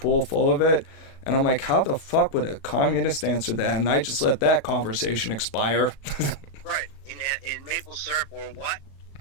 full of it? And I'm like, how the fuck would a communist answer that? And I just let that conversation expire. Right. In maple syrup or what?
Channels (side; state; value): right; late; 36 ms